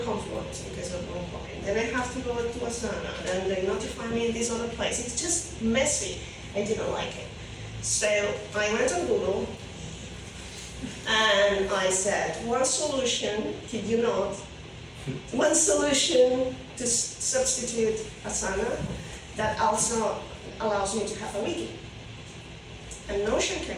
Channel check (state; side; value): identical; both; correlation 1.00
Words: Confluence because of one point. Then I have to go to Asana, and they notify me in this other place. It's just messy. I didn't like it. So I went on Google, and I said, one solution, kid you not, one solution to substitute Asana that also allows me to have a wiki. And Notion